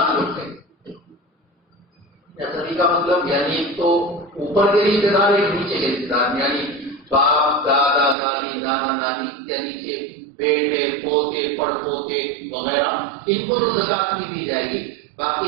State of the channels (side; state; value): left; drops out; at 8.2 s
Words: ہے، نسبی کا مطلب یعنی ایک تو اوپر کے رشتے دار، ایک نیچے کے رشتے دار، یعنی باپ، دادا، دادی، نانا، نانی یا نیچے بیٹے، پوتے، پڑ پوتے وغیرہ، ان کو تو زکات نہیں دی جائے گی،